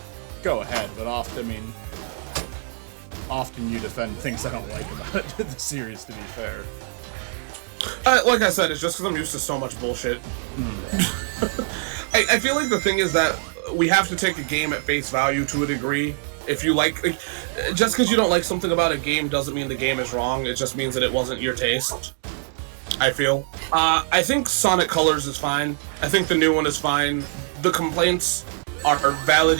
Go ahead, but often you defend things I don't like about the series, to be fair. Like I said, it's just because I'm used to so much bullshit. I feel like the thing is that we have to take a game at face value to a degree. If you like just because you don't like something about a game doesn't mean the game is wrong. It just means that it wasn't your taste. I feel. I think Sonic Colors is fine. I think the new one is fine. The complaints are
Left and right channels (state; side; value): silent; left; digital silence